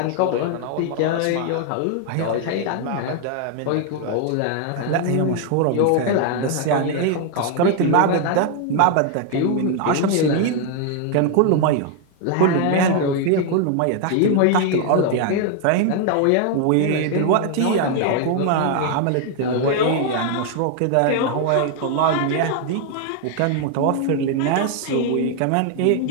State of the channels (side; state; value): both; different; correlation 0.00